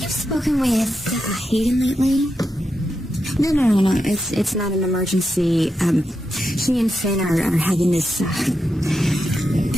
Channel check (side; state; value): both; normal; correlation 0.86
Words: spoken with Hayden lately? No. It's not an emergency. She and Finn are having this,